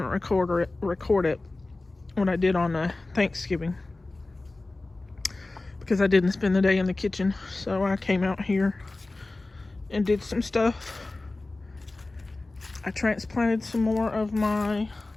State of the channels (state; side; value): quieter; right; 3.1 dB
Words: record it when I did on Thanksgiving, because I didn't spend the day in the kitchen. So I came out here and did some stuff. I transplanted some more of my